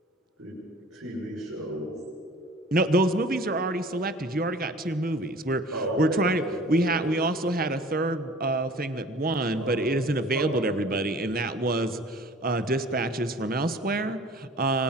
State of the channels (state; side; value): normal; both; correlation 0.46